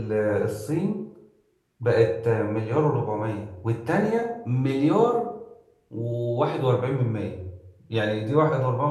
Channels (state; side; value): identical; both; correlation 1.00